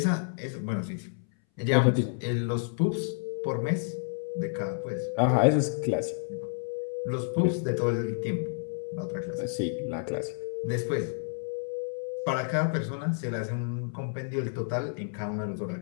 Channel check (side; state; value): right; silent; 58 dB below the other